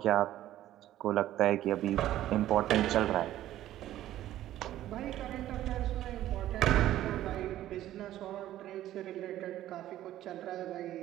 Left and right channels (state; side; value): quieter; left; 13.4 dB